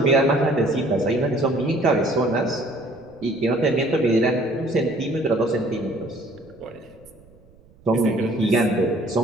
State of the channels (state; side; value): noise; right; rumble, 27 dB below the sound